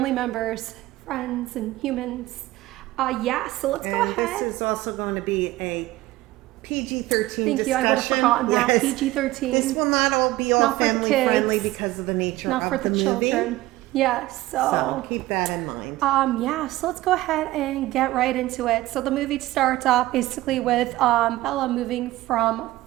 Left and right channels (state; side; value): quieter; left; 17.4 dB